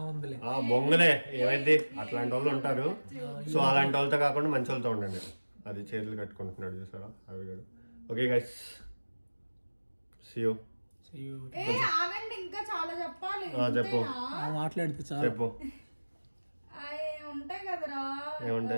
ఉందిలే. బొంగలే ఏమైంది, అట్లాంటి వాళ్ళు ఉంటారు. సో అలాంటి వాళ్ళతో కాకుండా మంచి వాళ్ళతో ఉండండి. అది చేతులు కట్టుకుంటున్నాడు చూసారా అవి కూడా. Okay guys, see you. ఆగండి, ఇంకా చాలా చెప్పాలి. చెప్పు, మాట్లాడితే చెప్పు. ఉంటాయి కదరా,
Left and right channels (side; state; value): both; inverted; correlation -1.00